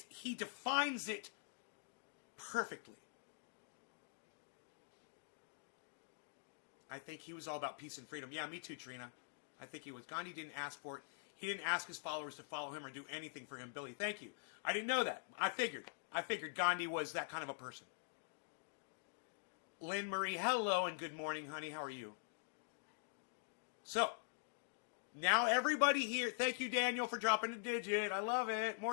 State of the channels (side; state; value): right; silent; digital silence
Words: He defines it perfectly. I think he was all about peace and freedom. Yeah, me too, Trina. I think he was. Gandhi didn't ask for it. He didn't ask his followers to follow him or do anything for him. Billy, thank you. I didn't know that. I figured Gandhi was that kind of a person. Lynn Marie, hello and good morning, honey. How are you? So, now everybody here, thank you, Daniel, for dropping a digit. I love it.